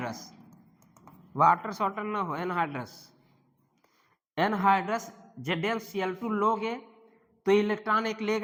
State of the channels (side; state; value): both; identical; correlation 1.00